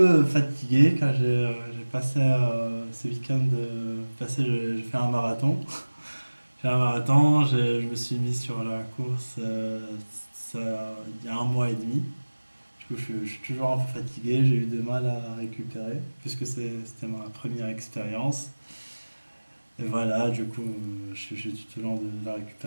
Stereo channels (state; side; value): inverted; both; correlation -1.00